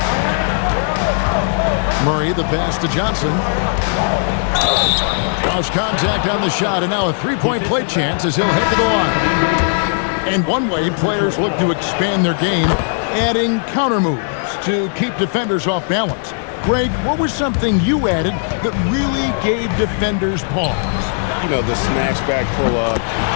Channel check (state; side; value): silent; right; 62 dB below the other